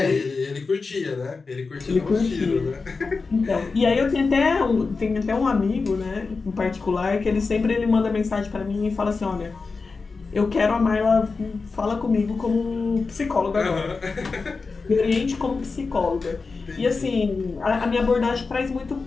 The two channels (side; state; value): right; quieter; 4.3 dB